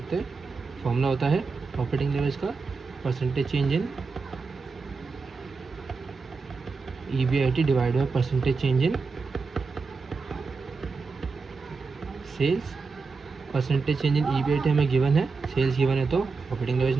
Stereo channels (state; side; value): quieter; left; 4.5 dB